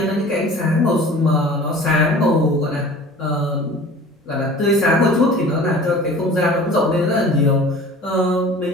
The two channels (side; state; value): both; normal; correlation 0.43